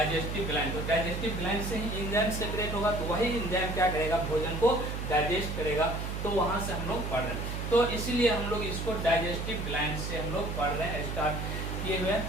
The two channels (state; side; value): noise; right; hum, 4 dB below the sound